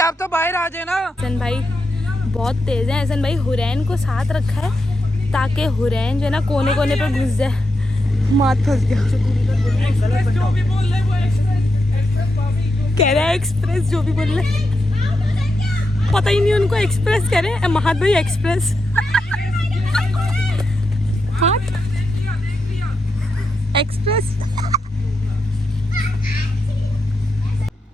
तो बाहर आ जाए ना। एहसन भाई बहुत तेज है। एहसन भाई हुरैन को साथ रखा है ताकि हुरैन जो है ना कोने कोने पे घुस जाए। माथ फंस गया। जो भी बोल रहे वो एक्सप्रेस भाभी कह रहा है एक्सप्रेस, जो भी बोल रहे पता ही नहीं उनको। एक्सप्रेस कह रहे हैं, महात भाई एक्सप्रेस। हाथ एक्सप्रेस।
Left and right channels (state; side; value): normal; both; correlation 0.86